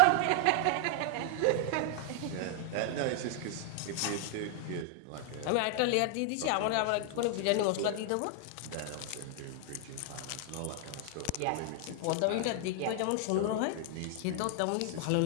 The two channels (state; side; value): different; both; correlation 0.00